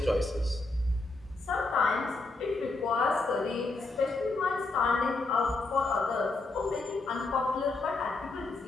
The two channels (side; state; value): right; quieter; 3.4 dB